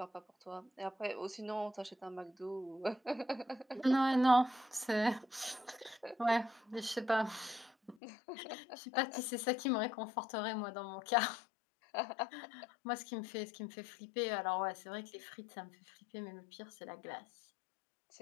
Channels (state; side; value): drops out; right; at 8.0 s